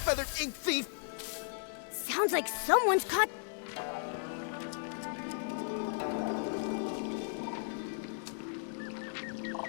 ink thief! Sounds like someone's caught...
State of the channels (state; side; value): silent; right; digital silence